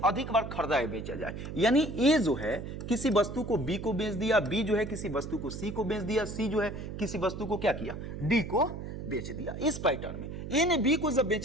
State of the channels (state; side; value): noise; right; hum, 8 dB below the sound